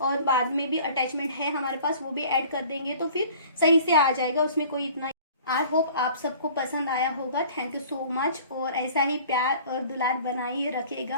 और बाद में भी अटैचमेंट है हमारे पास, वो भी ऐड कर देंगे तो फिर सही से आ जाएगा, उसमें कोई इतना आई होप आप सबको पसंद आया होगा। थैंक यू सो मच, और ऐसा ही प्यार और दुलार बनाए रखेगा,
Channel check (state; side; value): inverted; both; correlation -0.48